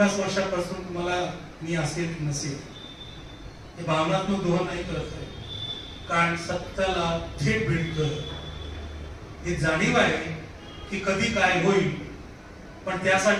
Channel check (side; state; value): both; identical; correlation 1.00